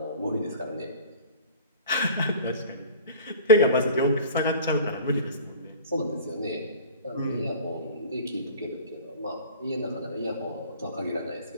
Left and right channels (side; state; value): both; inverted; correlation -0.40